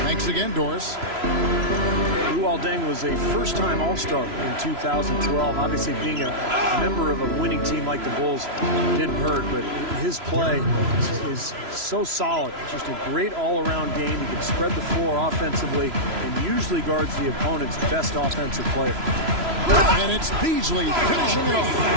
Thanks again, Doris. Luol Deng was a first-time All-Star in 2012. Obviously, being a member of a winning team like the Bulls didn't hurt, but his play is so solid. Just a great all-around game. He can spread the floor offensively and usually guards the opponent's best offensive player. And it's Beasley finishing it off.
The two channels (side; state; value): left; late; 3.0 ms